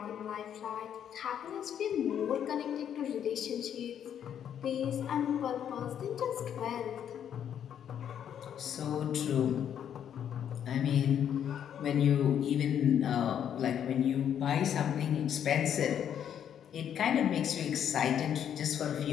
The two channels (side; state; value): right; quieter; 9.2 dB